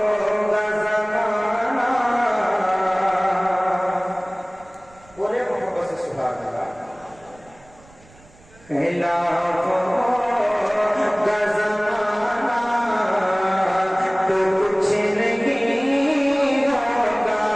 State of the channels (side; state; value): right; noise; rumble, 27 dB below the sound